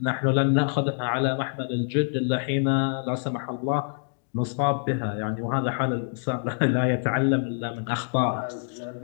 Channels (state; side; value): silent; right; digital silence